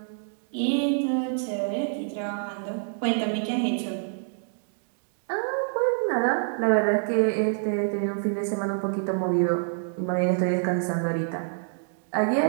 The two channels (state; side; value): silent; left; 60 dB below the other